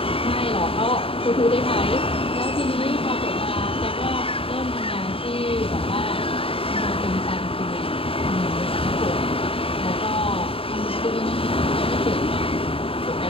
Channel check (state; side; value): late; right; 0.27 ms